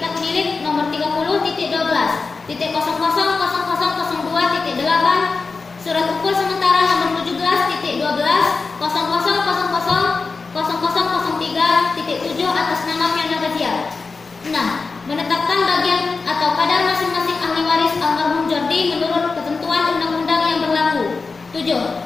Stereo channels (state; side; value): quieter; right; 4.3 dB